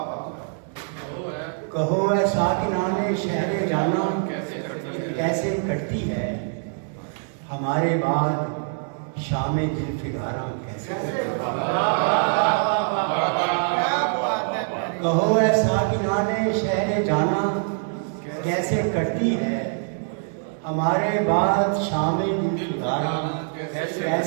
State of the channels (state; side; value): silent; left; 62 dB below the other